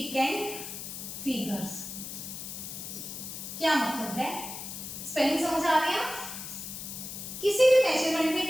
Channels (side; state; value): left; noise; hiss, 8 dB below the sound